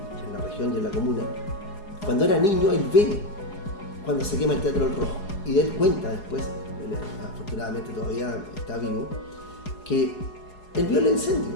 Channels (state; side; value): late; right; 4.8 ms